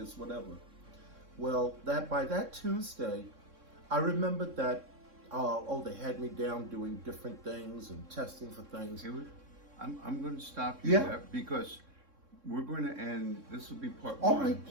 whatever. Well, by that Tuesday, I remembered that, they had me down doing different things and testing for things. Haywood, I'm going to stop you Yeah. there because we're going to end, this will be part All one. right,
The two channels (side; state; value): left; late; 3.6 ms